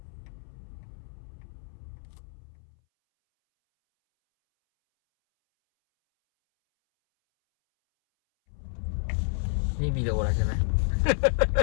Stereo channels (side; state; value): right; silent; 58 dB below the other